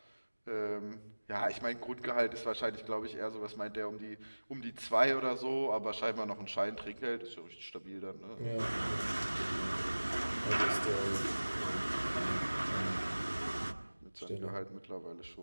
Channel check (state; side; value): inverted; both; correlation -1.00